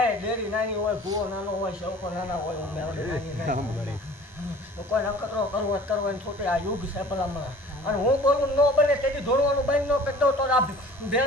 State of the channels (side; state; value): both; normal; correlation 0.47